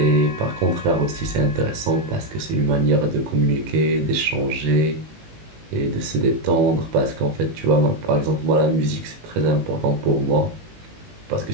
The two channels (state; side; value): late; left; 19 ms